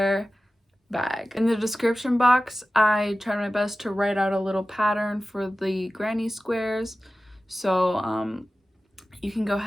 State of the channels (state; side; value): normal; both; correlation 0.95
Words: bag. In the description box I tried my best to write out a little pattern for the granny squares, so you can go